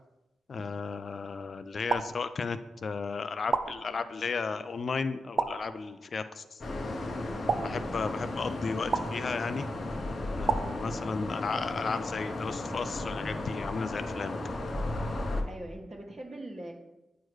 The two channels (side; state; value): both; normal; correlation 0.86